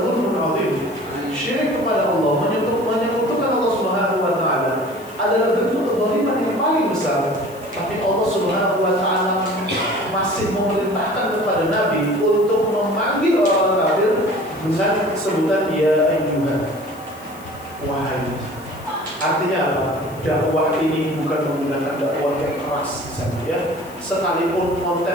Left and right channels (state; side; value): noise; left; hiss, 22 dB below the sound